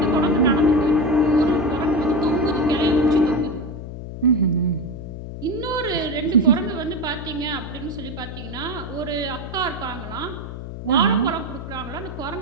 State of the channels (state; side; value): noise; left; hum, 9 dB below the sound